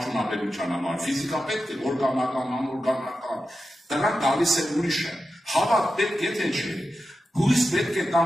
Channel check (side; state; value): both; normal; correlation 0.91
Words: համար, ֆիզիկա պետք է, օրգանական, անօրգանական, դրանք գալիս է ուրիշը, հավատ պետք է թե չէ, հույս պետք է